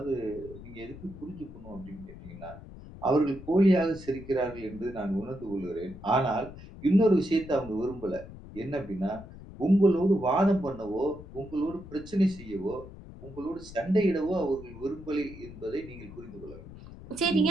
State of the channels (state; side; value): noise; left; rumble, 15 dB below the sound